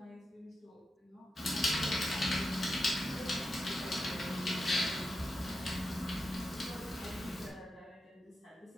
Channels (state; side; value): normal; both; correlation 0.88